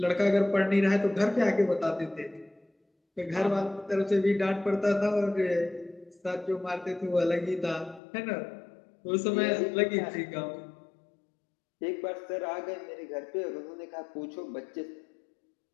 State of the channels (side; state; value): right; drops out; at 8.0 s